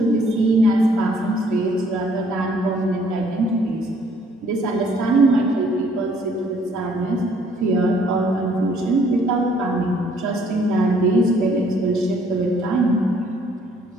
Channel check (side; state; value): both; normal; correlation 0.63